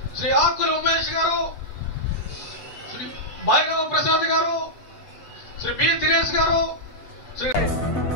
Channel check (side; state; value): right; late; 7.9 ms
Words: శ్రీ ఆకుల ఉమేష్ గారు, శ్రీ భైరవ ప్రసాద్ గారు, శ్రీ బి దినేష్ గారు, శ్రీ